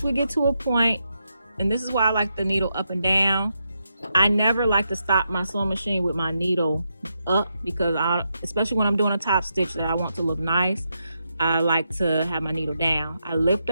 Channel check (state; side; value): inverted; both; correlation -0.84